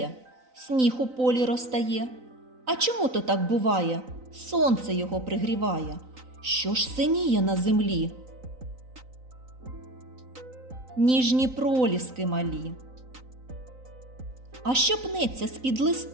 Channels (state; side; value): late; left; 3.9 ms